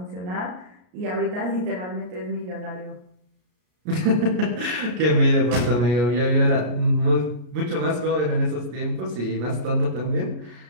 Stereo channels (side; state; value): left; late; 33 ms